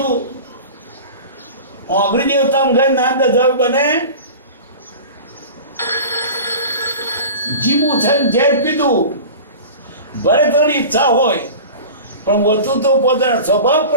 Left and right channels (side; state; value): both; inverted; correlation -0.35